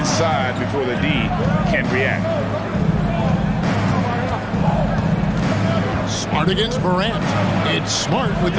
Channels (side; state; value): both; identical; correlation 1.00